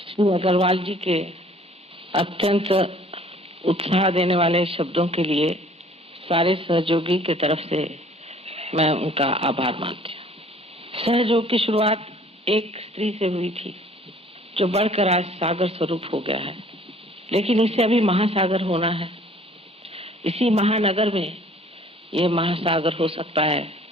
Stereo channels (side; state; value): both; normal; correlation 0.54